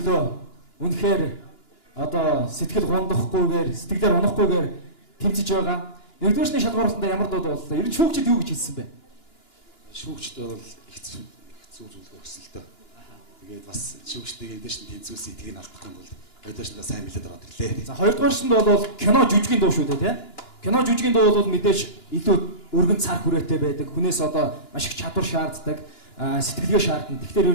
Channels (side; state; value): right; late; 2.9 ms